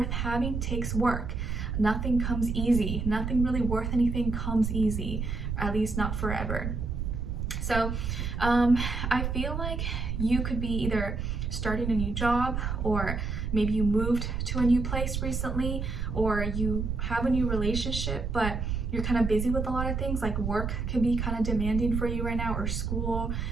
having takes work. Nothing comes easy. Nothing really worth anything comes easy, at least not forever. So I feel like you could be either starting a new job, or maybe you moved to a new place recently, or you have a new relationship, but you're kind of busy with a lot of things, like work can be kind of demanding for you right now, or school,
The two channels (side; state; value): right; noise; rumble, 2 dB below the sound